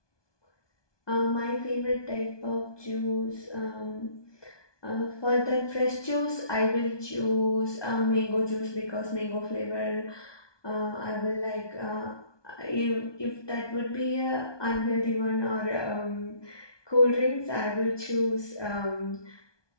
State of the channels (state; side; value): late; right; 1.2 ms